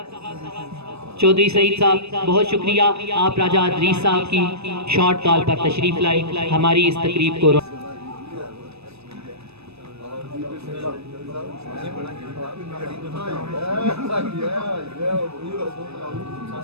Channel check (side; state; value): left; late; 0.79 ms